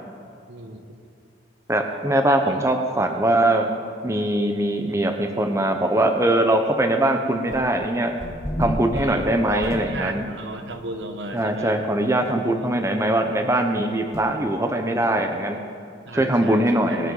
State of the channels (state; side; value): normal; both; correlation 0.63